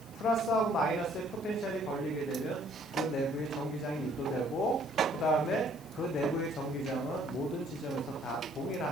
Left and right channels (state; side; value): noise; left; hiss, 24 dB below the sound